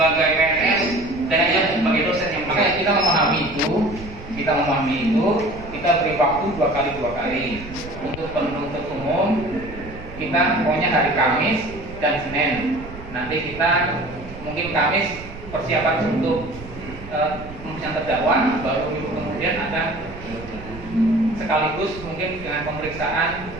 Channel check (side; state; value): right; noise; rumble, 14 dB below the sound